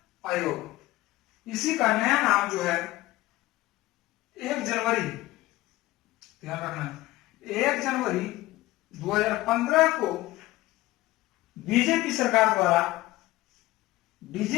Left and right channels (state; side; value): quieter; right; 17.9 dB